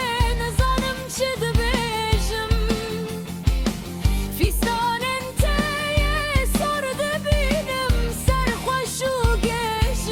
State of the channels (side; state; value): both; identical; correlation 1.00